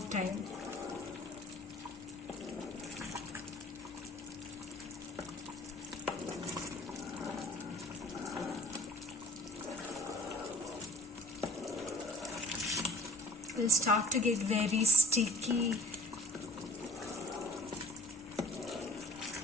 It will start to get very sticky.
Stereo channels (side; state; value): both; normal; correlation 0.49